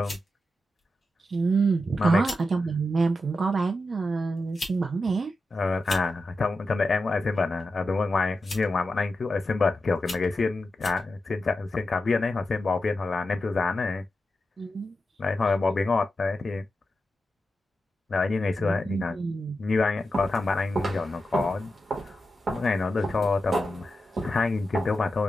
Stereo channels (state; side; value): normal; both; correlation 0.89